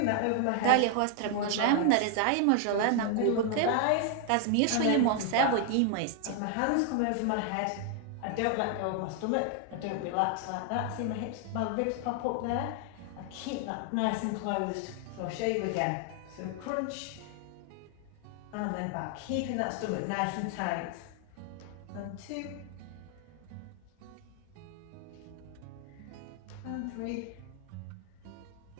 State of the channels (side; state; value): both; different; correlation 0.00